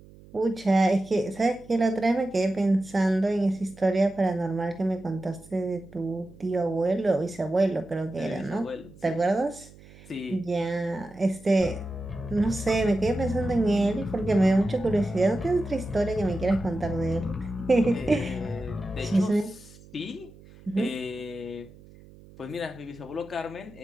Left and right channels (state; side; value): noise; right; hum, 22 dB below the sound